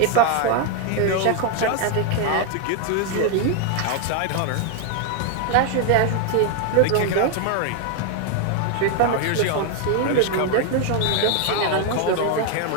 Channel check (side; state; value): both; different; correlation 0.01